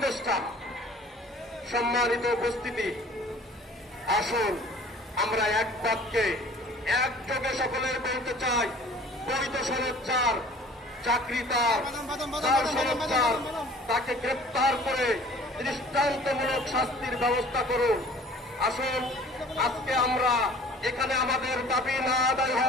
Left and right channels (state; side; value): normal; both; correlation 0.49